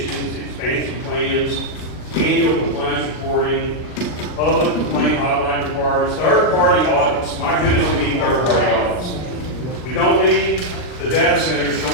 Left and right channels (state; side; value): late; right; 39 ms